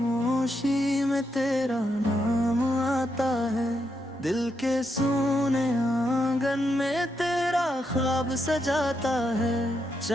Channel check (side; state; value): both; normal; correlation 0.81